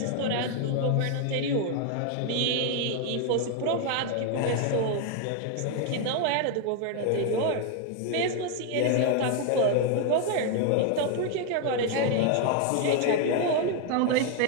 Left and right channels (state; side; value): different; both; correlation 0.01